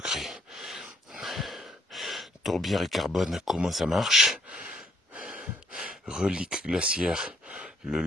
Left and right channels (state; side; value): normal; both; correlation 0.68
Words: Tourbière et carbone, comment ça marche? Relique glaciaire, le